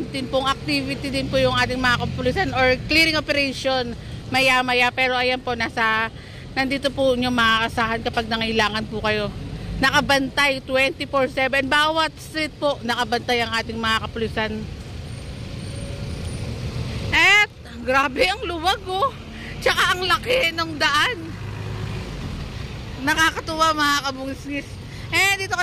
din pong activity din po yung ating mga kapulisan or clearing operation maya maya, pero ayan po nandito po nyo makakasahan kapag nangailangan po kayo. Nakabantay 24/7 bawat street po, nakabantay ang ating mga kapulisan. At grabe ang luwag oh. Tsaka ang laki ng daan. Nakakatuwa mga kabungis-ngis. Dito ko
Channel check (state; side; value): identical; both; correlation 1.00